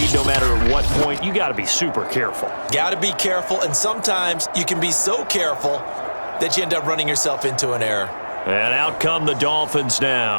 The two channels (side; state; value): both; inverted; correlation -1.00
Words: no matter at what point, you got to be super careful. Got to be careful, and sometimes you can be so careful that you end up running yourself into an error. And out come the Dolphins